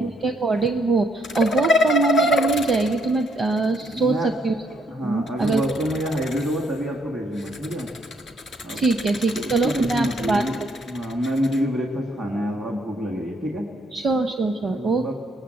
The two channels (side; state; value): both; normal; correlation 0.71